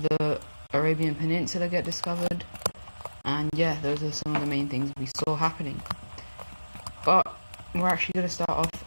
the Arabian Peninsula get discovered. And yeah, those are some of the main things we saw happening. But we're actually going to start off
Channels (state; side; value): inverted; both; correlation -1.00